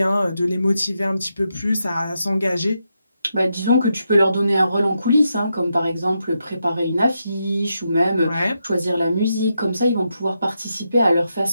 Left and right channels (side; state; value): both; inverted; correlation -0.84